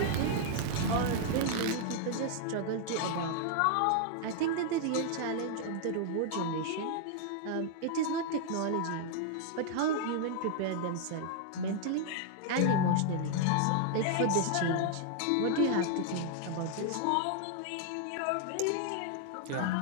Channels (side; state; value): both; different; correlation 0.00